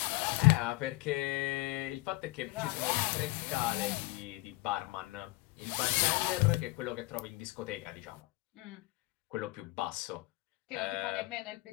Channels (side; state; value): right; quieter; 21.8 dB